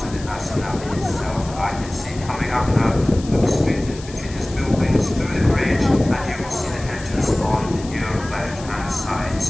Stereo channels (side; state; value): left; noise; hiss, 17 dB below the sound